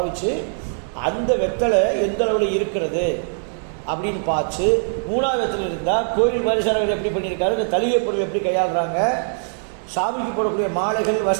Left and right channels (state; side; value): silent; left; 65 dB below the other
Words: அந்த வெத்தலை எந்த அளவில் இருக்கிறது அப்படின்னு பார்த்து 3வது வெத்தலை இருந்தால் கோயில் பரிசாரர்கள் எப்படி பண்ணியிருக்காரு, இந்த தலிகை பொருள் எப்படி கையாளுறாங்க, சாமிக்கு போடக்கூடிய மாலைகள்